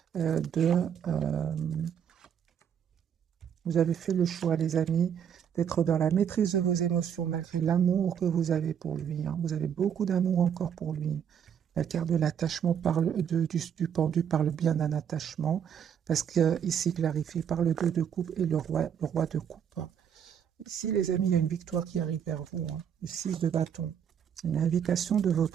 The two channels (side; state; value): left; quieter; 8.3 dB